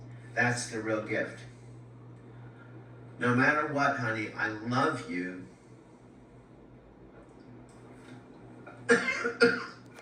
That's the real gift. No matter what, honey, I love you.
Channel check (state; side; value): identical; both; correlation 1.00